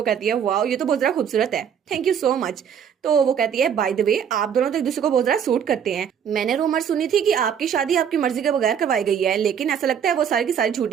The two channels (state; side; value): quieter; left; 8.1 dB